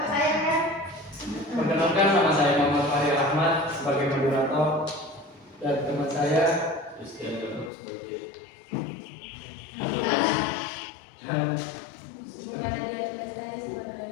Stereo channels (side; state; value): right; drops out; at 7.7 s